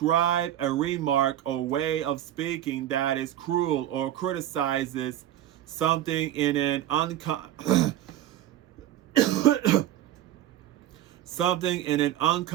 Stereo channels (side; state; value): left; quieter; 12.4 dB